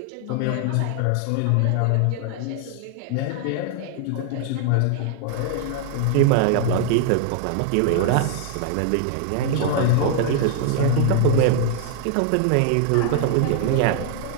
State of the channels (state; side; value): different; both; correlation 0.00